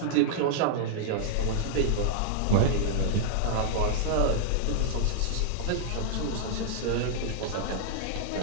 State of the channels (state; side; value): different; both; correlation -0.01